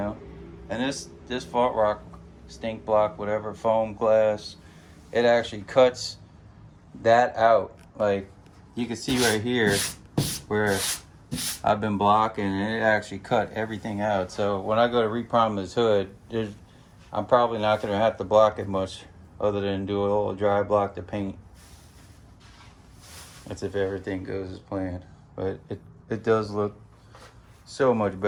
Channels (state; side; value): identical; both; correlation 1.00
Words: And this fault rock, stink block, whatever, foam glass, it actually cuts that out. Like, you can see right here where I've been blocking, and it actually cut everything out. So when I go to reprime this hood, I'm probably not going to have to block it much, other than do a little dry block to paint. That's if everything goes as planned. But it does look so much